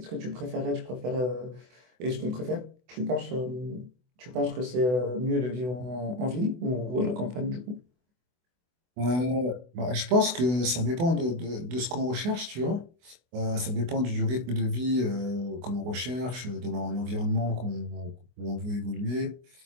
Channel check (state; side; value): late; left; 24 ms